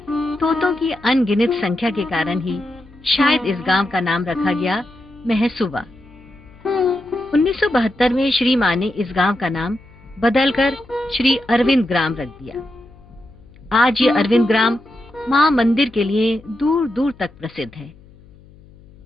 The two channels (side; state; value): left; noise; hum, 25 dB below the sound